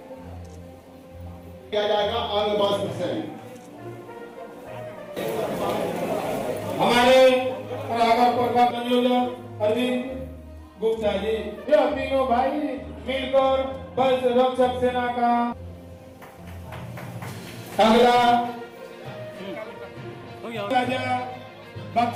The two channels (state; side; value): identical; both; correlation 1.00